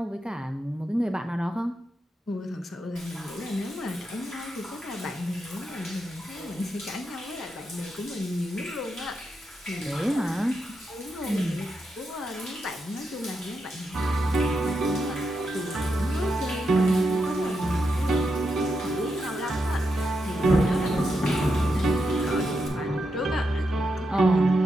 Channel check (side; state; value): both; normal; correlation 0.85